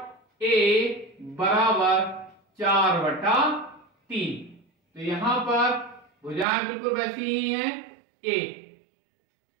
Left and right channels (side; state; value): left; drops out; at 6.5 s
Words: A बराबर 4/3। तो यहां पर भुजाएं बिल्कुल वैसी ही हैं, A